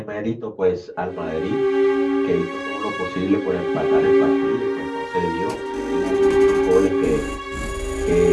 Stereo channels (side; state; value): both; identical; correlation 1.00